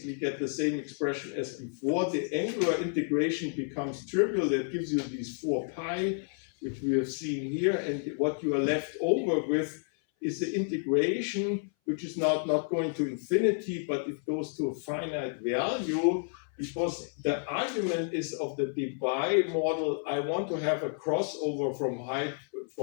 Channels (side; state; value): right; silent; 57 dB below the other